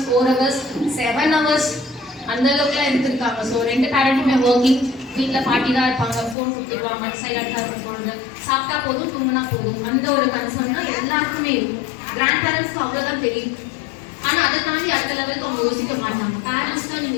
4 hours 7 hours அந்த அளவுக்குலாம் எடுத்துருக்காங்க. ஸோ 2 பேரண்ட்டுமே ஒர்க்கிங், வீட்டில் பாட்டி தான் இருப்பாங்க, ஃபோன் கொடுத்துருவாங்க, சைலண்டாக இருக்கும் பொழுது, சாப்பிட்டா போதும் தூங்கினா போதும், அந்த ஒரு கன்சர்ன் தான் எல்லாருக்குமே இருக்கும். கிராண்ட் பேரண்ட்ஸ்க்கு அவ்வளோதான் தெரியும். ஆனால் அதை தாண்டி அடுத்த லெவலுக்கு அவங்க யோசிக்க மாட்டாங்க. பேரண்ட்ஸ் தான்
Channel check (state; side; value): drops out; right; at 6.4 s